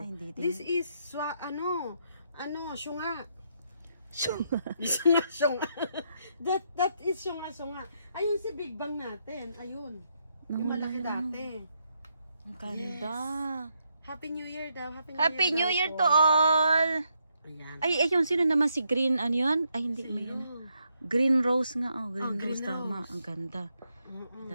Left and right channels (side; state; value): both; inverted; correlation -0.78